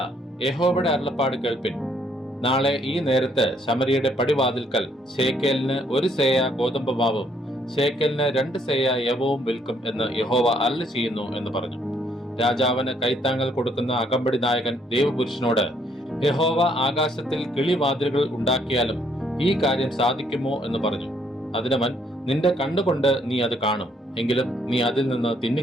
യഹോവയുടെ അരുളപ്പാട് കേൾപ്പിൻ. നാളെ ഈ നേരത്ത് ശമരിയുടെ പടിവാതിൽക്കൽ ശേക്കേലിന് 1 സേയ ഗോതമ്പ് മാവും ശേക്കേലിന് 2 സേയ യവവും വിൽക്കും എന്ന് യഹോവ അരുളി ചെയ്യുന്നു എന്ന് പറഞ്ഞു. രാജാവിന് കൈത്താങ്ങൽ കൊടുക്കുന്ന അകമ്പടി നായകൻ ദൈവപുരുഷനോട്, യഹോവ ആകാശത്തിൽ കിളിവാതിലുകൾ ഉണ്ടാക്കിയാലും ഈ കാര്യം സാധിക്കുമോ എന്ന് പറഞ്ഞു. അതിനവൻ, നിന്റെ കണ്ണുകൊണ്ട് നീ അത് കാണും, എങ്കിലും നീ അതിൽ നിന്ന്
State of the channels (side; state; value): both; normal; correlation 0.68